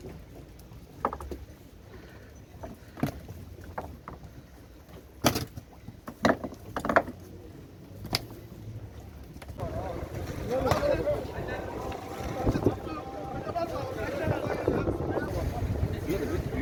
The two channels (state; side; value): identical; both; correlation 1.00